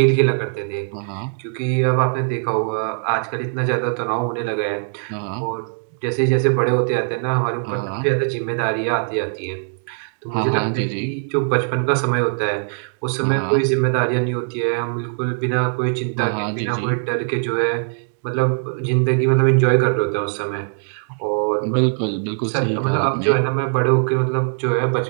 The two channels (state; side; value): silent; left; digital silence